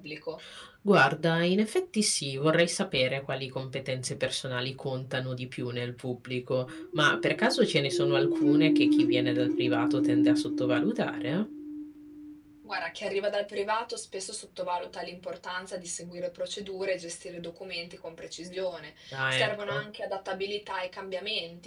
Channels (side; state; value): both; identical; correlation 1.00